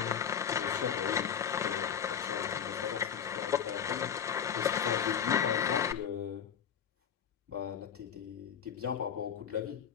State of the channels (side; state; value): right; quieter; 8.1 dB